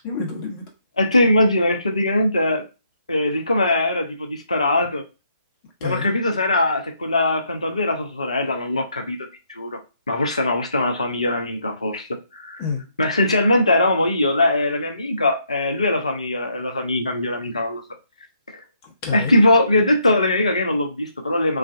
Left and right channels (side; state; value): both; inverted; correlation -0.73